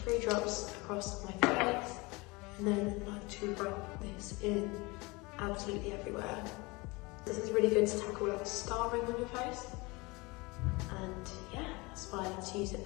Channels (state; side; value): quieter; right; 24.9 dB